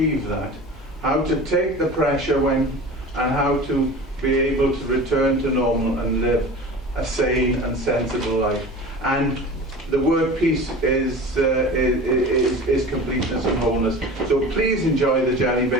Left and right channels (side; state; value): both; normal; correlation 0.36